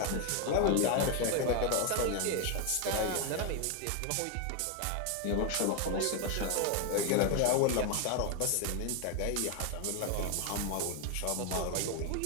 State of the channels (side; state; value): both; different; correlation 0.01